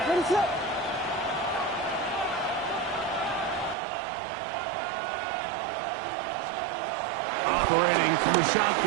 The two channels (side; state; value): left; drops out; at 3.8 s